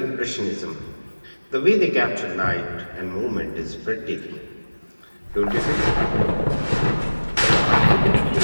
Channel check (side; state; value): both; inverted; correlation -1.00